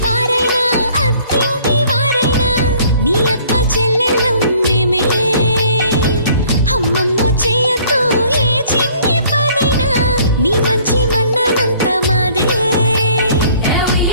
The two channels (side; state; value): both; inverted; correlation -0.57